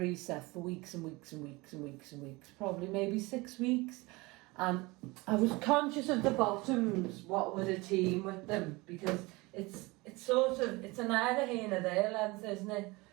set for weeks and weeks and weeks and weeks and weeks, probably maybe 6 weeks, and I was conscious of the bottoms, what were the team with them, because it's sort of, it's a neither here nor there length, isn't it?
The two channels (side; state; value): left; quieter; 23.5 dB